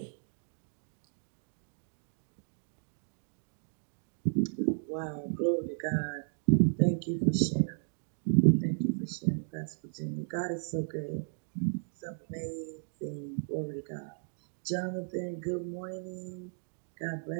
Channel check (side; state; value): left; silent; digital silence